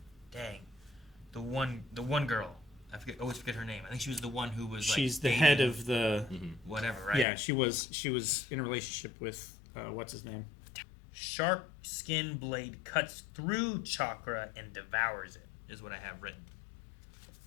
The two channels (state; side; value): drops out; right; at 7.2 s